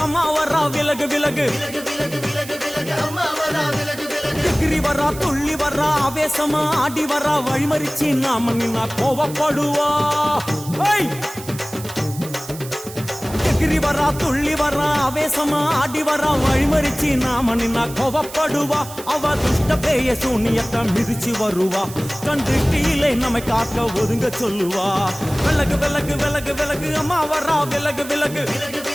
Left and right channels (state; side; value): noise; right; hiss, 14 dB below the sound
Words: அம்மா வரா விலகு விலகு எகிரி வரா துள்ளி வரா ஆவேசமா ஆடி வரா வழிமறிச்சு நாம நின்னா கோவப்படுவா எகிரி வரா துள்ளி வரா ஆவேசமா ஆடி வரா வழிமறிச்சு நாம நின்னா கோவப்படுவா அவ துஷ்ட பேய சூனியத்தை மிதிச்சு வருவா கண்டு கீழே நம்மை காக்க ஒதுங்க சொல்லுவா விலகு விலகு விலகு விலகு அம்மா வரா விலகு விலகு